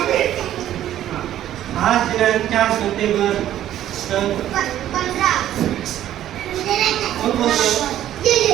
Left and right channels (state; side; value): quieter; left; 12.1 dB